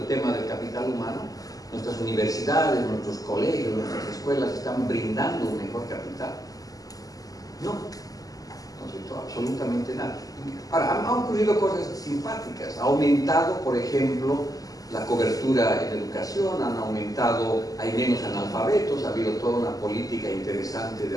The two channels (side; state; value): right; late; 0.17 ms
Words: tema del capital humano. Nuestras universidades, nuestros colegios, nuestras escuelas están brindando un mejor capital. No, no se hizo absolutamente nada. Ahora, han ocurrido cosas simpáticas. Ha aumentado, por ejemplo, la cobertura en educación, han aumentado, hay menos analfabetos, ha habido toda una política interesante de